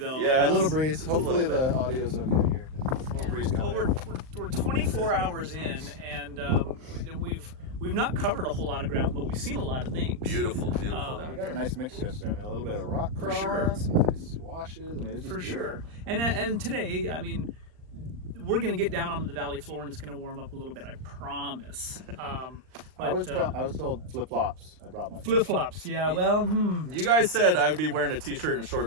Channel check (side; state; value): left; late; 39 ms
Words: Yeah, a little breeze. Hopefully the audio's okay here. A little breeze coming. Well, we're 24 hours in, and we've not covered a whole lot of ground, but we've seen a lot of things. Beautiful down We got a nice mix yesterday. I mean, a little bit of rock crawl, some nice washes. I mean, it's just for sure. And today, I mean, we're going to get down onto the valley floor, and it's going to warm up a little bit. I promise. I was told flip flops. I brought my flip flops. Yeah. Well, You guys said I would be wearing a t-shirt and